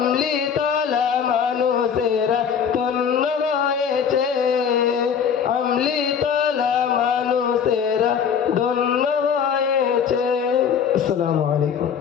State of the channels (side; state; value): right; quieter; 7.3 dB